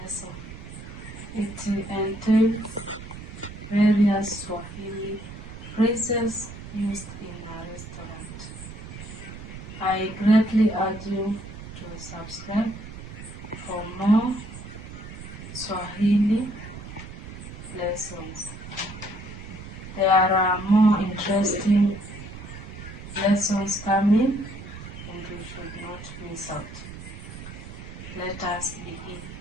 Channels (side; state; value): right; noise; rumble, 12 dB below the sound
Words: It entails various Swahili phrases used in a restaurant. I greatly urge you to subscribe for more Swahili lessons. There are more interesting lessons coming and you should not miss out. Let us begin.